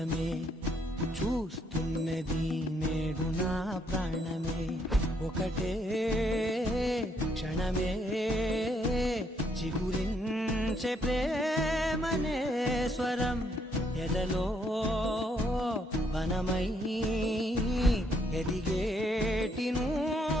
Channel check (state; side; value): normal; both; correlation 0.72